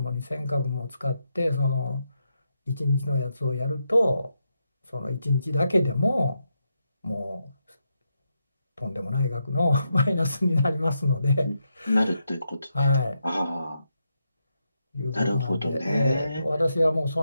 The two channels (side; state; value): both; inverted; correlation -0.83